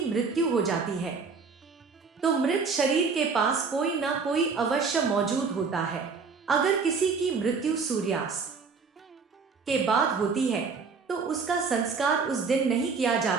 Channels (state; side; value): quieter; left; 5.0 dB